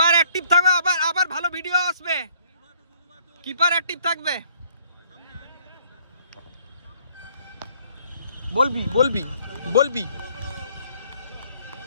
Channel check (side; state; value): both; inverted; correlation -0.62